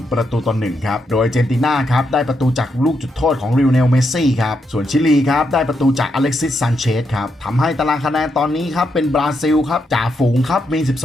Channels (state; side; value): normal; both; correlation 0.81